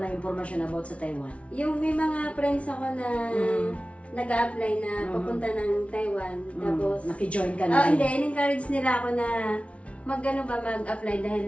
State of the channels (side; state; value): right; late; 0.063 ms